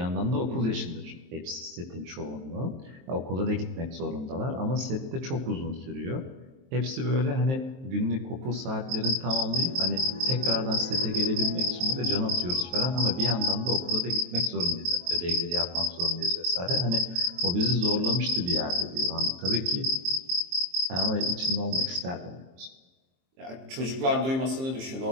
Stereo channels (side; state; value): left; late; 23 ms